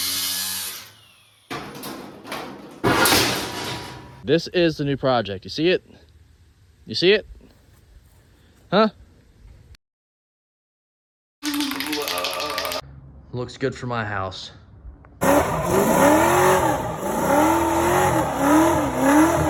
This is the new project. You see it? You see it? Huh? Looks good for my house.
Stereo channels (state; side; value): identical; both; correlation 1.00